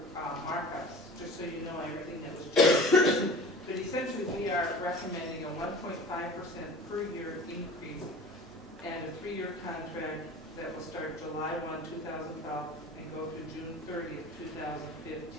markups, just so you know everything that was changed. But essentially, we are recommending a 1.5% per year increase and a 3-year contract that will start July 1, 2012 and go through June 30th,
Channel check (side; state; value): both; normal; correlation 0.41